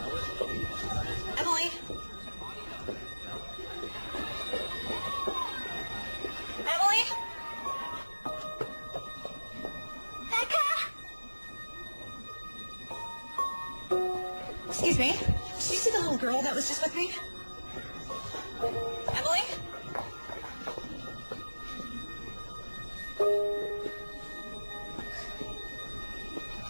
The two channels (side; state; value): both; inverted; correlation -1.00